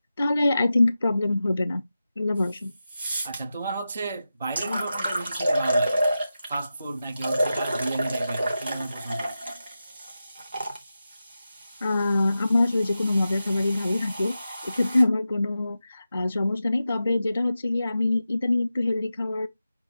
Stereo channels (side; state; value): both; inverted; correlation -0.92